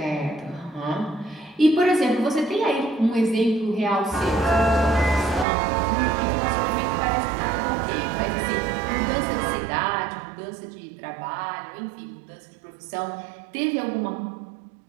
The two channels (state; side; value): drops out; left; at 5.5 s